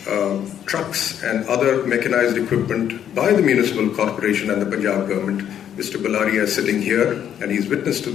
trucks and other mechanized equipment by the municipal corporation and the Punjab government. Mr. Balaria is sitting here, and he's witness to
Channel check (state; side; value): quieter; right; 9.7 dB